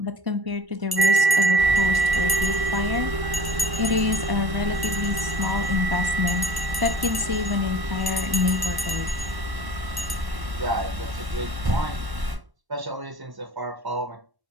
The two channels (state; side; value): late; left; 1.1 ms